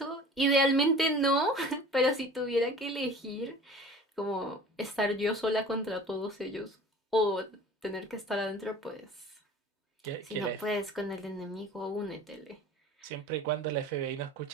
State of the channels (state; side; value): normal; both; correlation 0.43